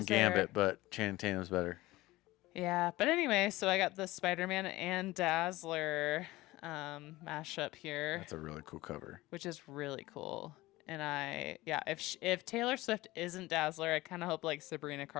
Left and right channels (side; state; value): right; quieter; 18.8 dB